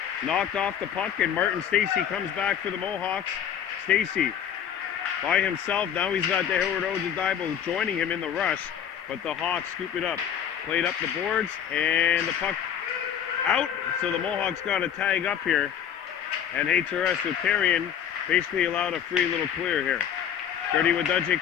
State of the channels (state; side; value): quieter; right; 9.1 dB